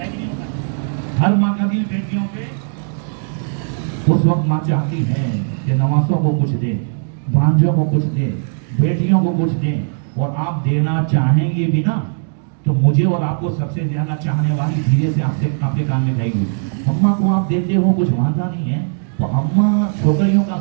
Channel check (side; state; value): left; silent; digital silence